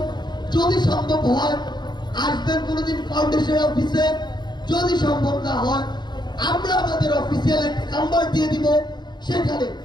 যদি সম্ভব হয় আসবেন কোনোদিন ফাউন্ডেশন অফিসে। যদি সম্ভব না হয় আমরা আমাদের অফিসিয়াল একটা নাম্বার দিয়ে দিব, সেখানে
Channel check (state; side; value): late; right; 0.21 ms